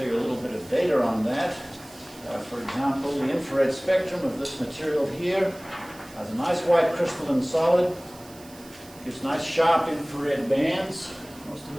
you a little bit of data on that. For example, the infrared spectrum of this material here has a nice white crystalline solid. Gives nice sharp infrared bands. Most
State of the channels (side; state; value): right; noise; hiss, 22 dB below the sound